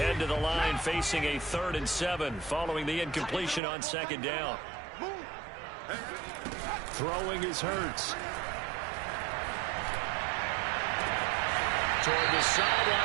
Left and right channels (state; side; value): drops out; left; at 3.6 s